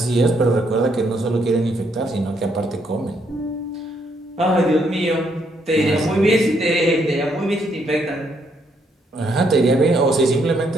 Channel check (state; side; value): normal; both; correlation 0.73